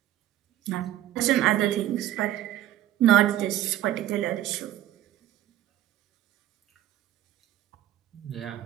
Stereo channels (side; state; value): left; quieter; 13.2 dB